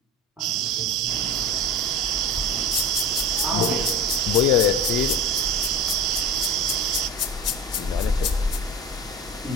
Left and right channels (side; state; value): both; normal; correlation 0.31